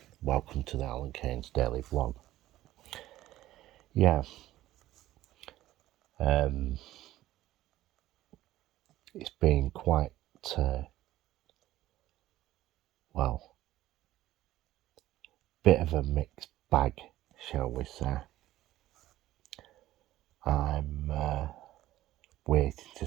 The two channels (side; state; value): left; quieter; 15.0 dB